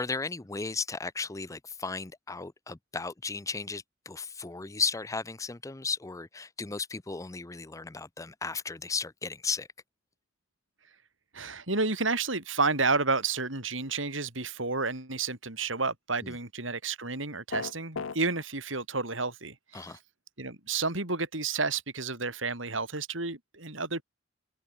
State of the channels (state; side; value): normal; both; correlation -0.17